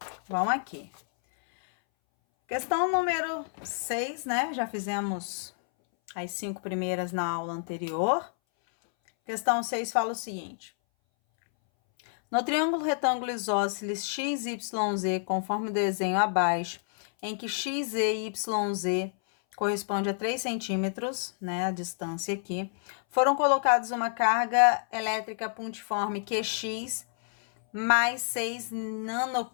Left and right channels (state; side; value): silent; right; 59 dB below the other